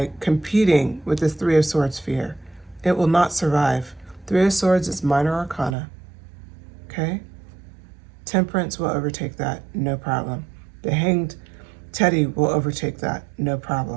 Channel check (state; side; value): drops out; left; at 5.8 s